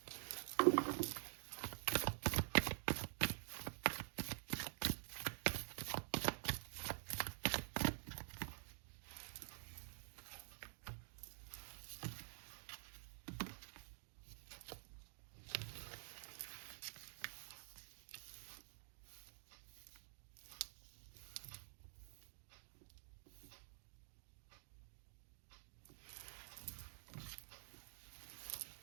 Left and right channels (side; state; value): left; silent; digital silence